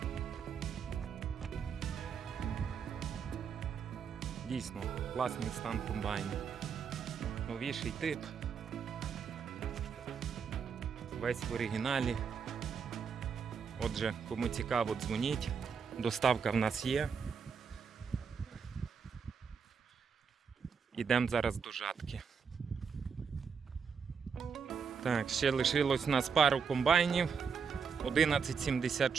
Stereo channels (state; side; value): quieter; left; 6.2 dB